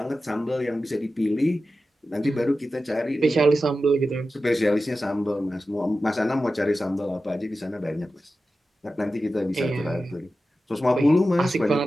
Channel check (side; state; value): both; normal; correlation 0.93